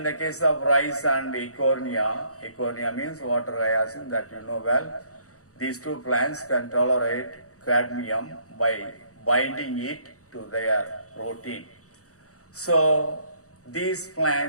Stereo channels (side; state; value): right; late; 0.65 ms